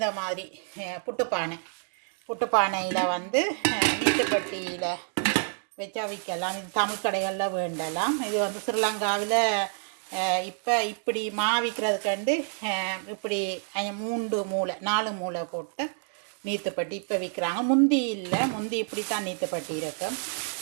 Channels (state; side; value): silent; left; 59 dB below the other